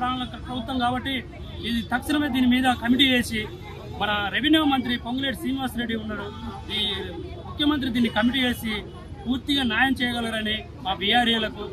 ప్రభుత్వం కాబట్టి ఇది తక్షణమే దీని మీద కమిటీ వేసి మన రెవెన్యూ మంత్రి పొంగులేటి శ్రీనివాసరెడ్డి ఉన్నారు. ఈ ముఖ్యమంత్రి దీన్ని కమిటీ వేసి పూర్తిగా న్యాయం చేయగలరని మా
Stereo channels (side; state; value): both; identical; correlation 1.00